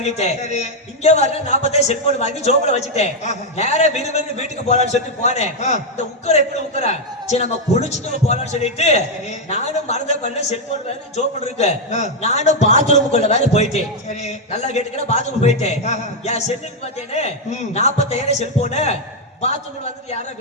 சரி. இங்க வர 40,000 செல்போன் வாங்கி ஜோப்ல வச்சுட்டேன். நேரா விறுவிறு வீட்டுக்கு போலான்னு சொல்லிட்டு போனேன். இந்த உக்கர எப்படி உக்கரா சரி நம்ம குளிச்சுட்டு போலான்னு சொல்லிட்டு நானும் மறந்த பண்ண செல்போன் வேற ஜோப்ல இருக்கு. நானும் பாத்ரூமுக்குள்ள வேற போயிட்டேன். சரி. நல்லா கேட்டுக்கிற பாத்ரூம் போயிட்டேன். என் செல்லுக்கு பார்த்தேன்னு 40,000 செல்போனு பாத்ரூம்ல வந்துட்டு யாரோ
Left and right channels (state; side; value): normal; both; correlation 0.01